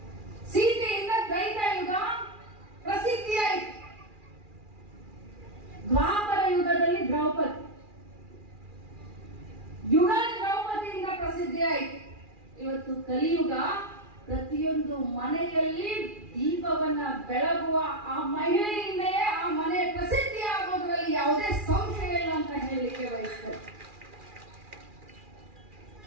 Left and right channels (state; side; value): late; left; 2.4 ms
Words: ಸೀತೆಯಿಂದ ತ್ರೈತಾಯುಗ ಪ್ರಸಿದ್ಧಿಯಾಯಿತು. ದ್ವಾಪರ ಯುಗದಲ್ಲಿ ದ್ರೌಪದಿಯಿಂದ ಪ್ರಸಿದ್ಧಿಯಾಯಿತು. ಇವತ್ತು ಕಲಿಯುಗ, ಪ್ರತಿಯೊಂದು ಮನೆಯಲ್ಲಿ ದೀಪವನ್ನ ಬೆಳಗುವ ಆ ಮಹಿಳೆಯಿಂದಲೇ ಆ ಮನೆ ಪ್ರಸಿದ್ಧಿ ಆಗೋದ್ರಲ್ಲಿ ಯಾವುದೇ ಸಂಶಯ ಇಲ್ಲ ಅಂತ ಹೇಳಲಿಕ್ಕೆ ಬಯಸ್ತೇನೆ.